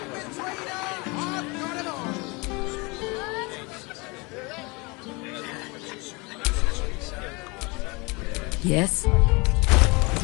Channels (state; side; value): quieter; right; 27.2 dB